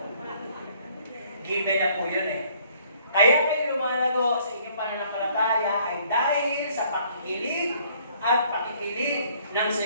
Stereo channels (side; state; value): both; inverted; correlation -0.61